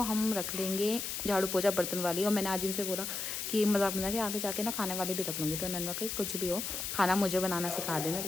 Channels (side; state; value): left; noise; hiss, 4 dB below the sound